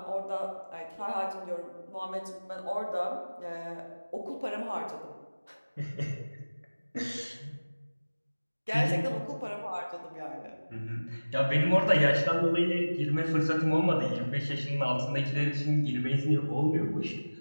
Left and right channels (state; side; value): inverted; both; correlation -1.00